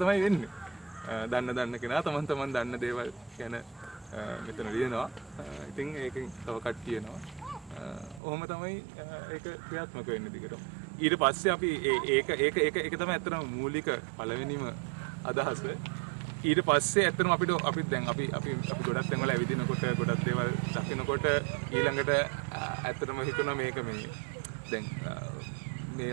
තමයි වෙන්නේ. දන්න කෙනා තමන් දන්න දේවල් ගැන මෙතන ලියනවා. ඉතින් ඒකෙන් තව කට්ටිය එනවා. ඔහොම තමයි ඒක ක්‍රියාත්මක වෙන්නේ දිගටම. ඊට පස්සේ අපි ඒක තමයි ඇත්තටම මූලික පළවෙනිම අදහස. ඊට පස්සේ ඇත්තටම අපි ගොඩක් තැන්වල ඇවිදිනකොට ගොඩක් දේවල් දකිනකොට ඊළඟට ඇත්තටම හිතුණා මේක මේ දැන්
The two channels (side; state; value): left; drops out; at 8.2 s